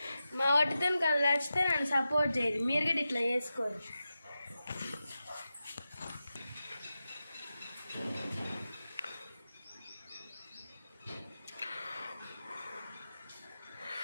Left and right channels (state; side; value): inverted; both; correlation -0.92